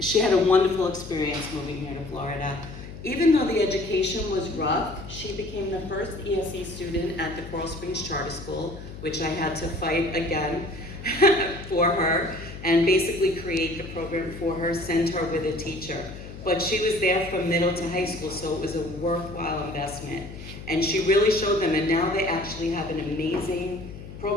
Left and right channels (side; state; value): left; noise; hum, 13 dB below the sound